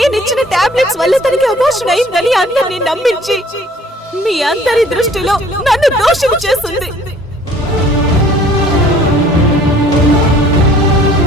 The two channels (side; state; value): both; normal; correlation 0.54